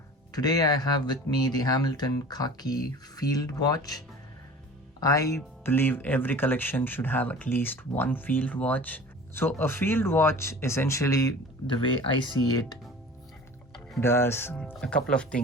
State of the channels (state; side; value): normal; both; correlation 0.41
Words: Today I have with me the Hamilton Khaki Field Watch. I believe every collection should have at least one field watch. So a field watch, essentially, the way I see it, does a couple of